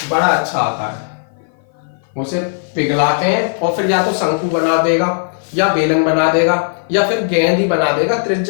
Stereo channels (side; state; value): right; silent; 56 dB below the other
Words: बड़ा अच्छा आता है। उसे पिघलाते हैं और फिर या तो शंकु बना देगा या बेलन बना देगा या फिर गेंद ही बना देगा,